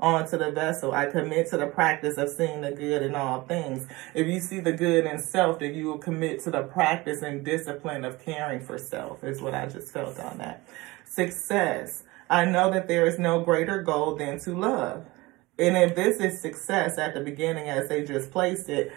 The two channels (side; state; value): left; quieter; 21.8 dB